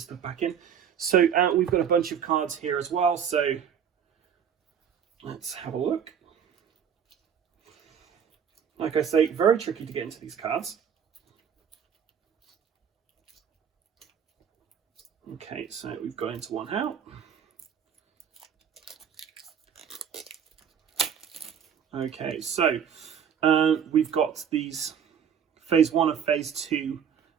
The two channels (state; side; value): quieter; left; 8.0 dB